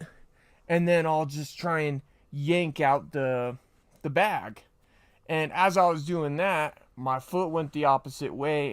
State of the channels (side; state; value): both; identical; correlation 1.00